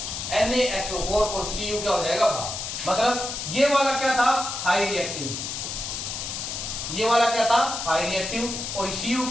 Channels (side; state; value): left; noise; hiss, 5 dB below the sound